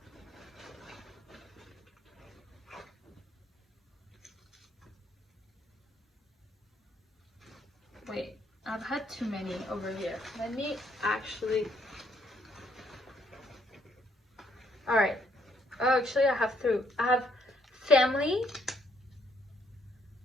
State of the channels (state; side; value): normal; both; correlation 0.70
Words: wait, I've had too many over here. Let me actually, all right. Oh, actually, I have two. I have family